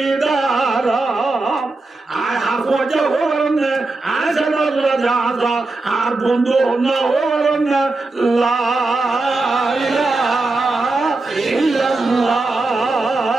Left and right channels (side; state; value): left; quieter; 3.3 dB